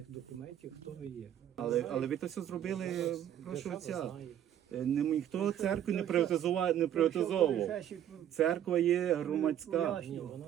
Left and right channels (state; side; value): quieter; left; 10.7 dB